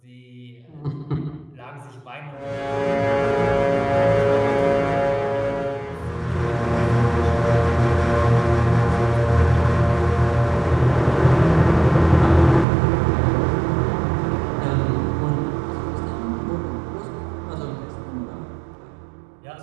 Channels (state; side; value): drops out; left; at 12.7 s